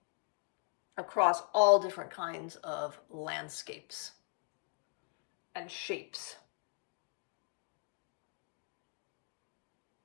across all different kinds of landscapes and shapes.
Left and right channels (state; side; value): quieter; right; 35.5 dB